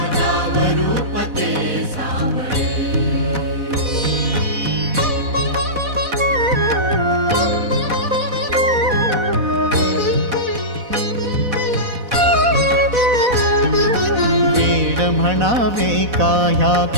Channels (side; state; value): left; late; 4.1 ms